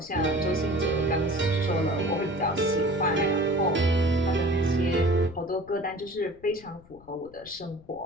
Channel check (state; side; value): noise; left; rumble, 24 dB below the sound